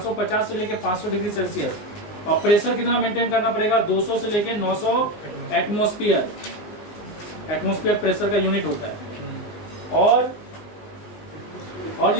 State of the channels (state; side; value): late; right; 19 ms